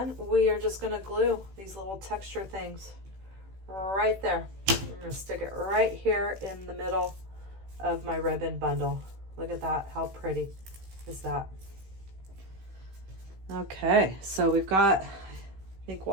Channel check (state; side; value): late; left; 16 ms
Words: we are just going to glue these little texture things right there. I'm going to stick it right here in the middle of my ribbon bundle. Look at that. How pretty is that? Okay, so we've got, I think